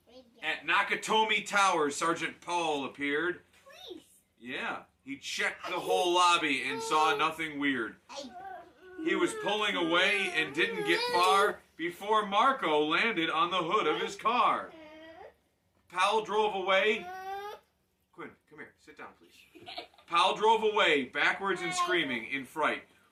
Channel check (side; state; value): both; identical; correlation 1.00